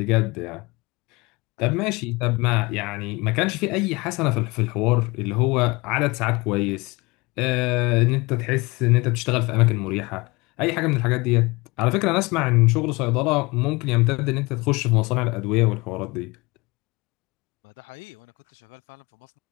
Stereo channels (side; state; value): right; quieter; 24.3 dB